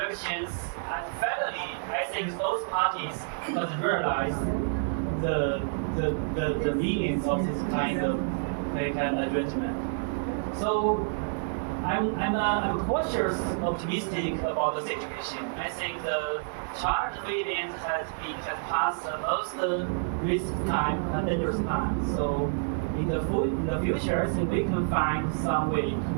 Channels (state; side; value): silent; left; digital silence